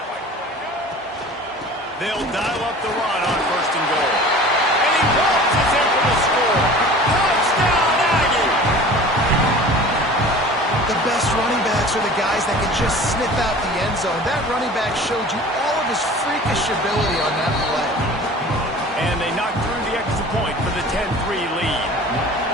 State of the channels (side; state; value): both; normal; correlation 0.42